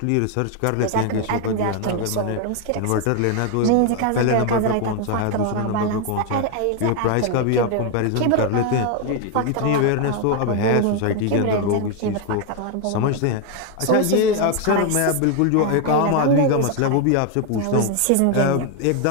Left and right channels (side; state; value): both; different; correlation 0.01